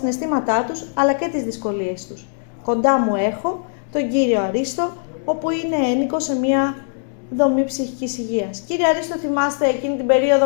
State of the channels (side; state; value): right; silent; digital silence